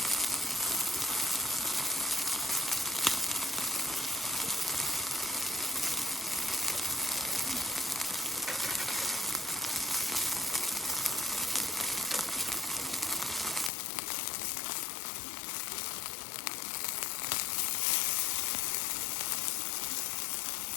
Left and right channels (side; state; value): right; drops out; at 13.7 s